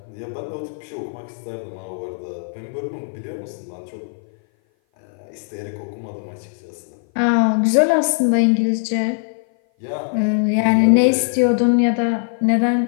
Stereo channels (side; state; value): right; silent; 57 dB below the other